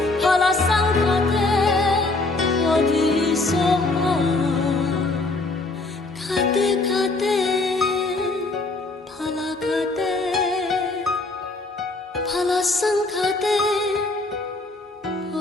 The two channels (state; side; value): quieter; right; 3.2 dB